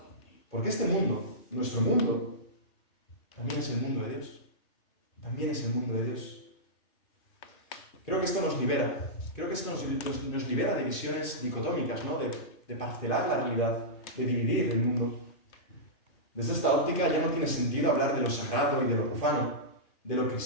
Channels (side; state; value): right; late; 2.4 ms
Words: Porque este mundo, nuestro mundo, también es el mundo de Dios. También es el mundo de Dios. Creo que esto nos libera. Creo que esto nos libera de visiones dicotómicas, ¿no?, de parcelar la realidad, de dividir el mundo. Desde esta óptica ya no tiene sentido hablar de lo sagrado y de lo profano, de lo